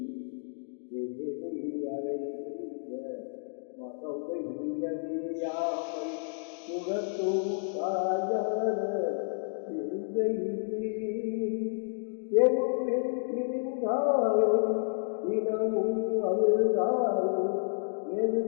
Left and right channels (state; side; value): silent; right; digital silence